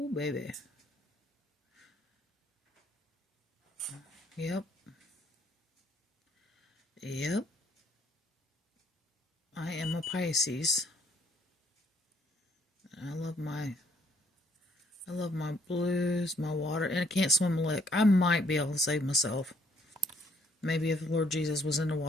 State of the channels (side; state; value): both; normal; correlation 0.66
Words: baby. Yep. Yep. I am a Pisces. I love my blues, my water, and I can't swim a lick. I might be able to save myself. Maybe if the Lord Jesus was in the